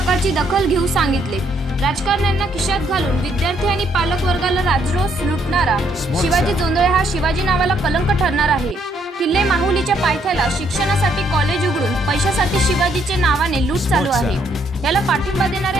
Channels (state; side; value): normal; both; correlation 0.70